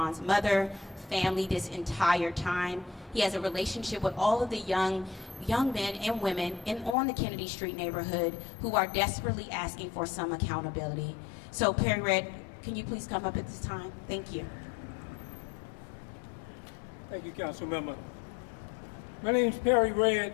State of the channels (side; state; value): right; drops out; at 7.0 s